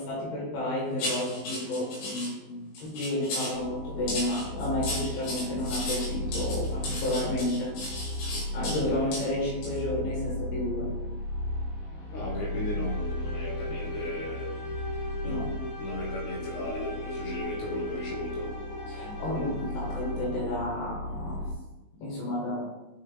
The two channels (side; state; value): right; late; 19 ms